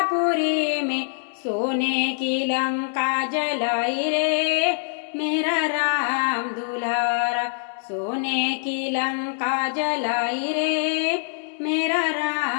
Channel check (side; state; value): right; silent; digital silence